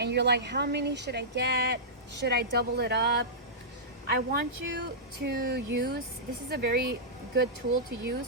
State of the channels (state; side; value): normal; both; correlation -0.14